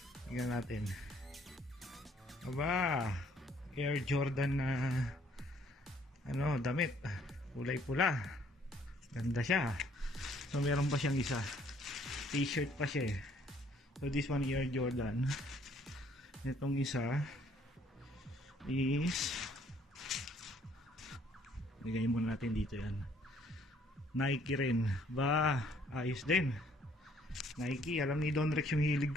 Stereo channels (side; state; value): both; normal; correlation 0.63